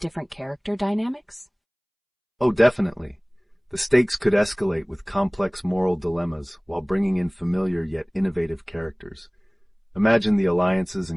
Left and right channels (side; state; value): both; identical; correlation 1.00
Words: character dynamics? Oh, definitely. The stakes could escalate with complex moral dilemmas while bringing in familiar yet innovative characters. Imagine the alliances